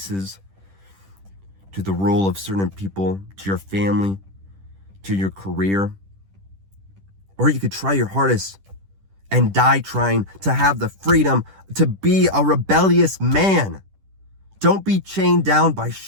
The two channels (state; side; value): late; left; 10 ms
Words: to the rule of certain people, to your family, to your career. Or you could try your hardest and die trying to have the freedom to be a rebellious man. Don't be chained down by